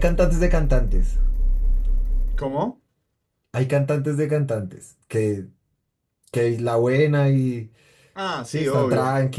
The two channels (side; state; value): both; identical; correlation 1.00